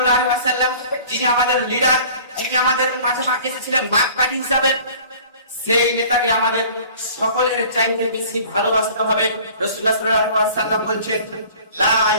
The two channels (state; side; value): inverted; both; correlation -0.48